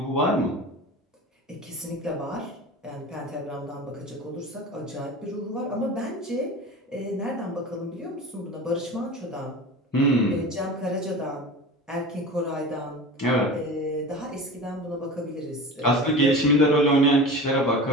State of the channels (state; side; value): normal; both; correlation 0.33